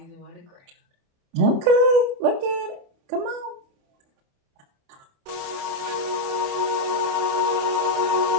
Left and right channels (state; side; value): late; left; 28 ms